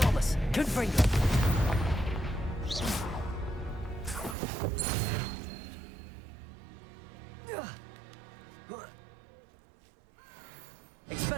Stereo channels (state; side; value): drops out; left; at 4.4 s